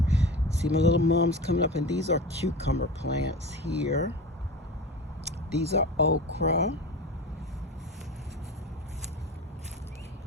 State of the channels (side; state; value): both; normal; correlation 0.31